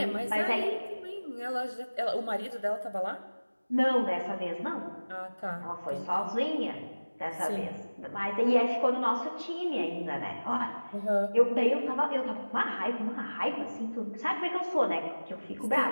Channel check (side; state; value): both; inverted; correlation -1.00